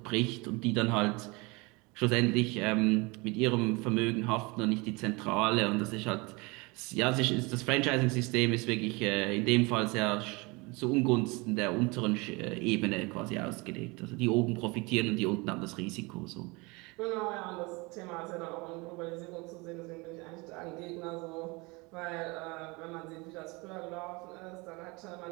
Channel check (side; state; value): left; quieter; 26.2 dB